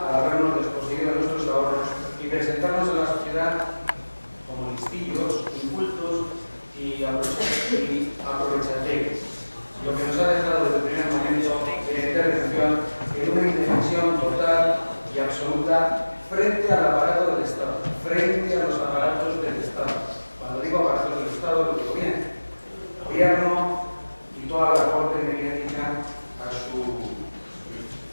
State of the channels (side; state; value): both; inverted; correlation -1.00